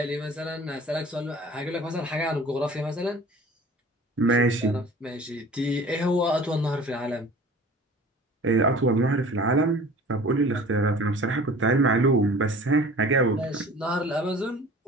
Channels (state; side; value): normal; both; correlation 0.44